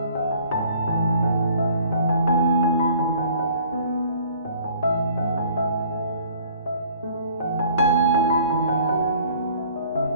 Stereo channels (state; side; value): inverted; both; correlation -0.53